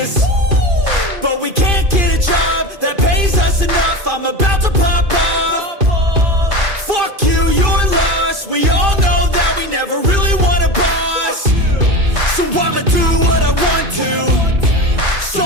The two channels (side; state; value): left; late; 2.5 ms